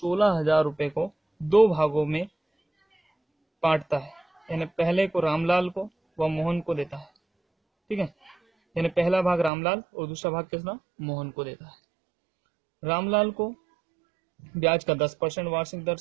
रुपये को 2 भागों में बांटता है, यानी पहले को रामलाल को व मोहन को देता है। ठीक है, यानी पहला भाग रामलाल और दूसरा भाग किसना मोहन को देता है। रामलाल को ब्याज का 10% वार्षिक दर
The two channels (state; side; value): drops out; left; at 9.5 s